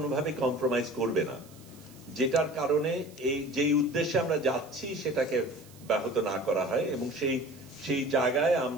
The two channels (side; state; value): right; noise; hiss, 24 dB below the sound